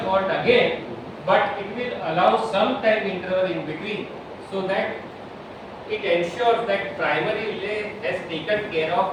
fault again, but it will allow some time interval in between, so that it ensures that primary relay has taken care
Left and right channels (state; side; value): identical; both; correlation 1.00